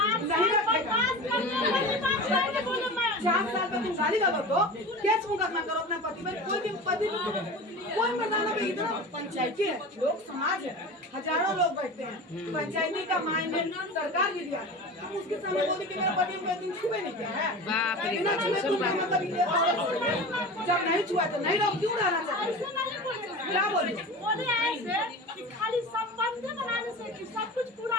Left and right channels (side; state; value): both; normal; correlation 0.32